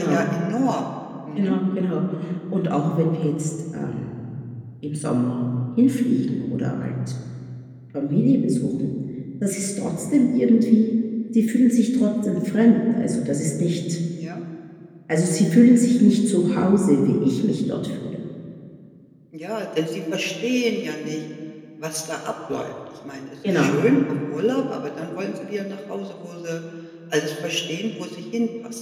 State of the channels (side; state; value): both; identical; correlation 1.00